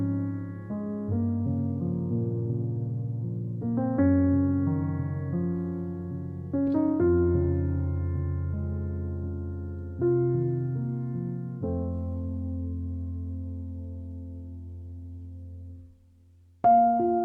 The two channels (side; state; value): both; identical; correlation 1.00